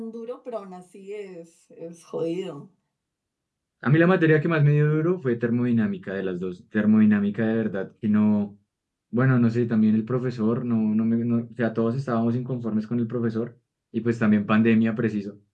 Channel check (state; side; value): identical; both; correlation 1.00